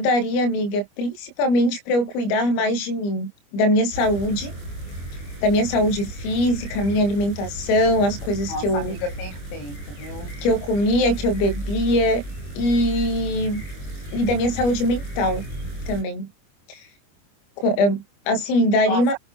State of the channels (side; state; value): right; late; 25 ms